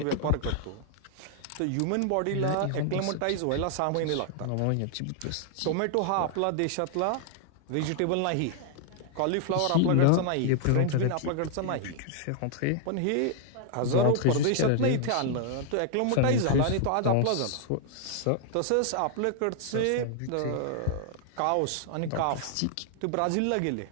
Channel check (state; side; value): different; both; correlation 0.00